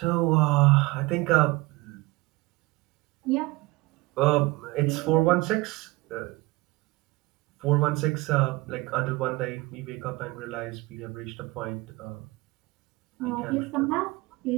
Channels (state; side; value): quieter; left; 22.4 dB